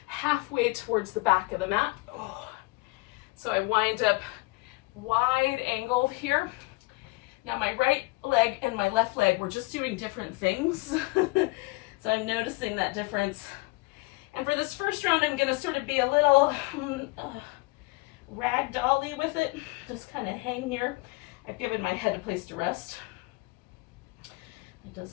halfway towards the back of the mat. Oh. So I wind up wide angled here. Now my right leg and my left leg, we're just doing different things. So I'm noticing that difference. And for this first round, I'm going to sort of be a little ragdolly with it. Just kind of hang here. I've given my head a place to rest. It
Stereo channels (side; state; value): right; quieter; 24.6 dB